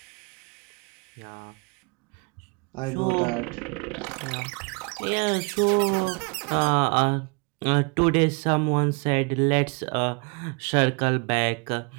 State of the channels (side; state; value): left; quieter; 32.9 dB